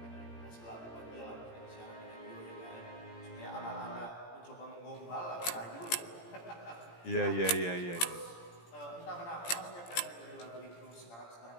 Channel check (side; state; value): right; late; 17 ms